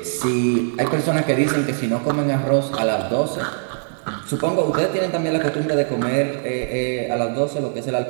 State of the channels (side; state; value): left; silent; digital silence